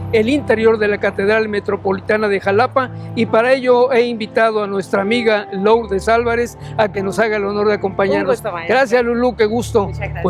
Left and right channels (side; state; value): both; identical; correlation 1.00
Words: el interior de la Catedral Metropolitana de Jalapa y para ello he invitado a nuestra amiga Lourdes Álvarez a que nos haga el honor de acompañarnos. Un gusto, maestro. Gracias, Lulú, qué gusto. Muchas gracias.